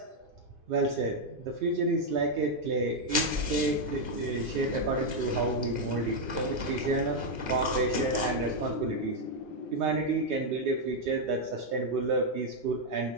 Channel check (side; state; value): left; late; 2.4 ms